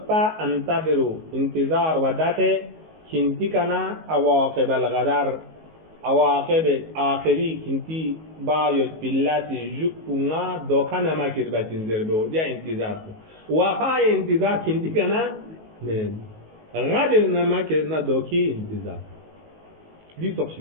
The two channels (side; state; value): left; late; 19 ms